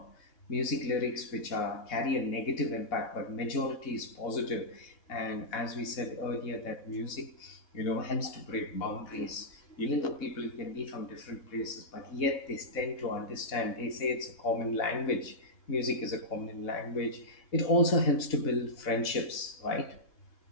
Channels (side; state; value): right; late; 4.0 ms